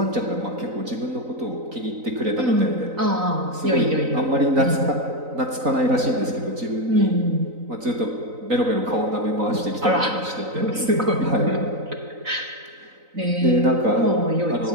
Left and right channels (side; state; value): left; late; 3.9 ms